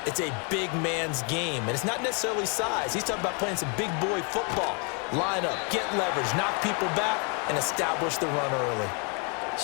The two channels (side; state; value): right; quieter; 35.8 dB